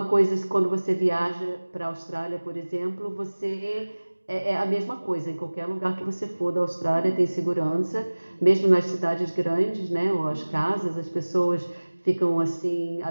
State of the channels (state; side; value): inverted; both; correlation -1.00